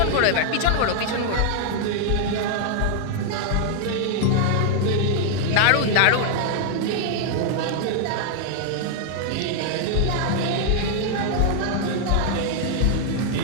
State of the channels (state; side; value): different; both; correlation 0.00